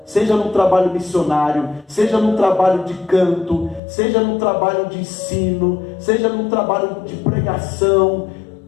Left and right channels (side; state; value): right; drops out; at 3.8 s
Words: seja no trabalho missionário, seja no trabalho de canto, seja no trabalho de ensino, seja no trabalho de pregação.